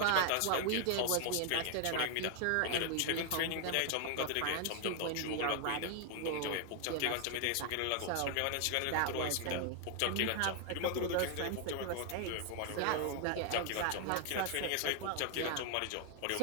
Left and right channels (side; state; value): both; different; correlation 0.00